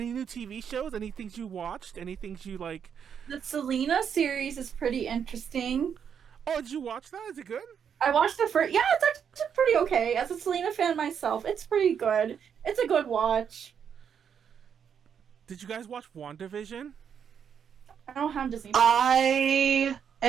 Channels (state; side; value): quieter; left; 7.7 dB